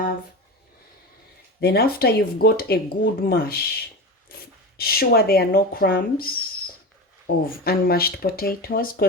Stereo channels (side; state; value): both; normal; correlation 0.25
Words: Then after you've got a good mash, sure there are no crumbs of unmashed potatoes,